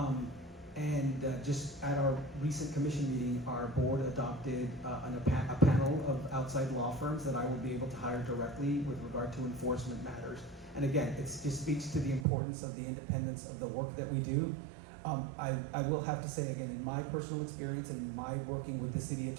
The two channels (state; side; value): drops out; left; at 12.2 s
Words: Just at our recent commission meeting, our board adopted a panel of outside law firms that I will be able to hire directly with regard to enforcement matters. And again, it just speaks to the importance of the independence of the work that we do. I will have to say again, in my personal experience and my working with the city